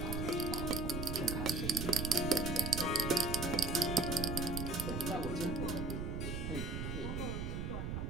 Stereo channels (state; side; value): noise; right; rumble, 3 dB below the sound